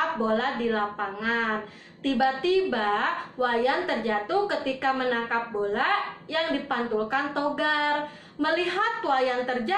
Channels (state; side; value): identical; both; correlation 1.00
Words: bola di lapangan. Tiba-tiba Wayan terjatuh ketika menangkap bola yang dipantulkan Togar. Melihat Wayan